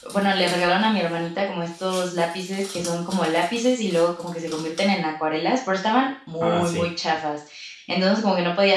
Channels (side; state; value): both; identical; correlation 1.00